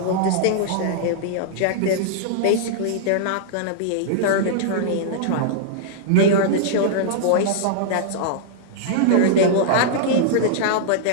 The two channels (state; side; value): different; both; correlation -0.02